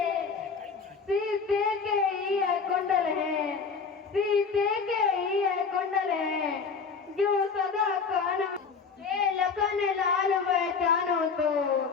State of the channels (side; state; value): right; quieter; 5.4 dB